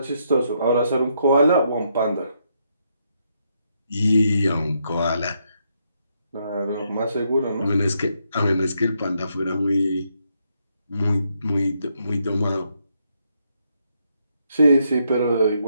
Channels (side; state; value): both; inverted; correlation -0.77